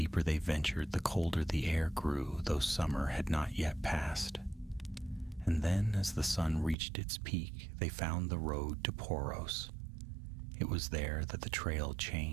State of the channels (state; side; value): drops out; left; at 6.8 s